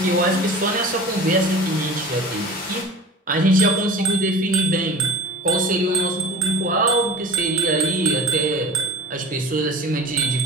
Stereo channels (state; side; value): normal; both; correlation 0.39